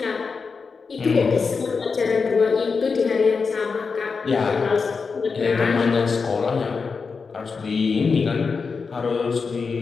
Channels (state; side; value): quieter; right; 5.0 dB